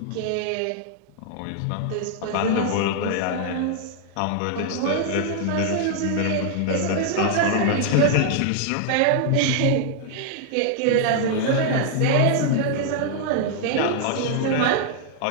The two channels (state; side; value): different; both; correlation 0.00